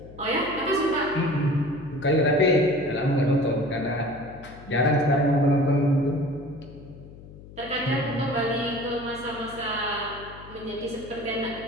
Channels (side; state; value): left; noise; hum, 18 dB below the sound